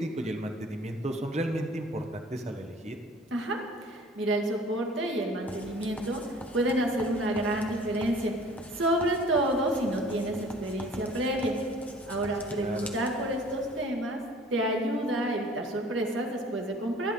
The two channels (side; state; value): both; normal; correlation 0.50